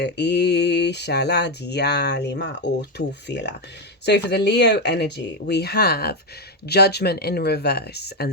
So for the Leo energy, we have Judgment in reverse,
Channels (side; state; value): both; normal; correlation 0.06